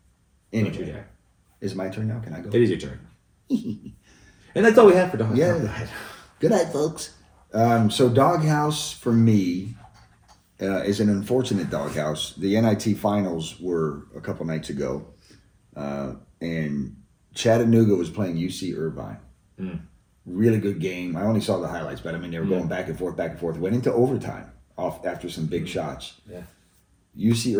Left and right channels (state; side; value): identical; both; correlation 1.00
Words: Anyway, Don't you dare. is it my turn now? Can I go? It is your turn. And that's all we have for Doghouse. Yeah. Good night, folks. So Doghouse for me is an unfortunate doghouse. The NIT finals were a couple nights ago, and Chattanooga was playing UC Irvine. Really good game. I only saw the highlights, but I mean they were going back and forth. Went into overtime. off after some big shots. Yeah. UC